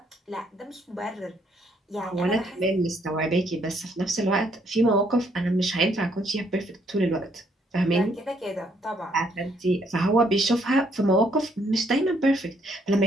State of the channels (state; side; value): normal; both; correlation 0.69